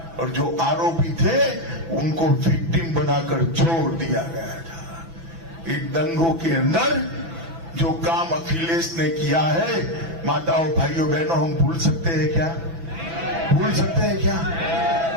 और जो आरोपी थे उनको विक्टिम बनाकर छोड़ दिया गया था। इन दंगों के अंदर जो काम अखिलेश ने किया है, माताओं, भाइयों, बहनों, हम भूल सकते हैं क्या? भूल सकते हैं क्या?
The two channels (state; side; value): late; left; 6.0 ms